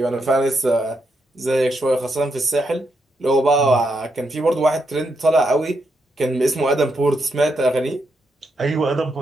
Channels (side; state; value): both; normal; correlation 0.80